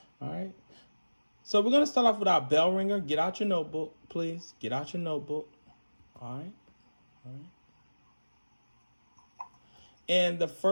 All right. So we're gonna start off with our bell ringer. Get out your notebook, please. Get out your notebook. All right. All right. And the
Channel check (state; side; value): inverted; both; correlation -1.00